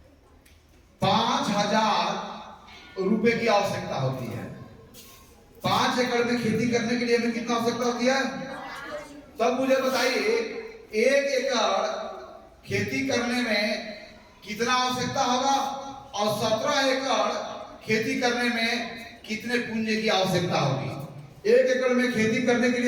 5,000 रुपए की आवश्यकता होती है। 5 एकड़ में खेती करने के लिए हमें कितना आवश्यकता होती है? तब मुझे बताइए 1 एकड़ खेती करने में कितना आवश्यकता होगा और 17 एकड़ खेती करने में कितने पूंजी की आवश्यकता होगी? 1 एकड़ में खेती करने के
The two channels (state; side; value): identical; both; correlation 1.00